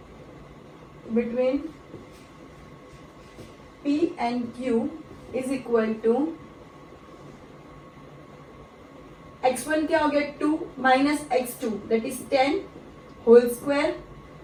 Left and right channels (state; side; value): identical; both; correlation 1.00